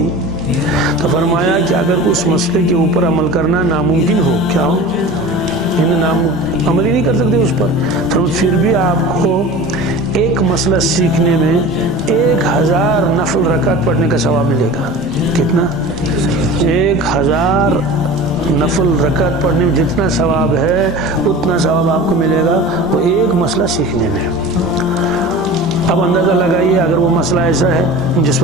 تو فرمایا کہ اگر اس مسئلے کے اوپر عمل کرنا ناممکن ہو، کیا ہو، عمل ہی نہیں کر سکتے اس پر، پھر بھی آپ کو ایک مسئلہ سیکھنے میں 1000 نفل رکعت پڑھنے کا ثواب ملے گا. کتنا؟ 1000 نفل رکعت پڑھنے میں جتنا ثواب ہے اتنا ثواب آپ کو ملے گا وہ ایک مسئلہ سیکھنے میں. اب اندازہ لگائیے اگر وہ مسئلہ ایسا ہے جس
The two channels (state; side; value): normal; both; correlation 0.36